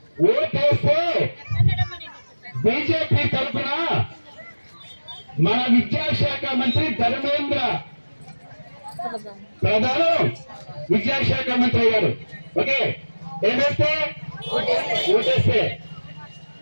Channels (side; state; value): both; inverted; correlation -1.00